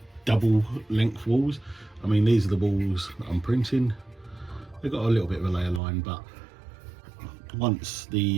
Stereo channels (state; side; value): drops out; left; at 5.8 s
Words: double length walls. I mean, these are the walls that I'm printing. They've got a little bit of a layer line, but once